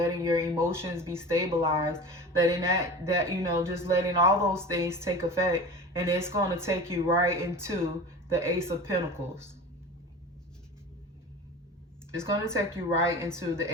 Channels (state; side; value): normal; both; correlation 0.34